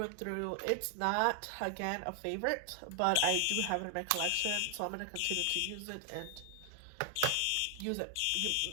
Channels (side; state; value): both; different; correlation 0.00